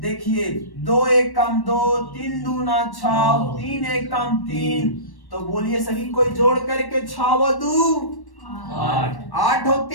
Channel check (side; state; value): right; late; 1.1 ms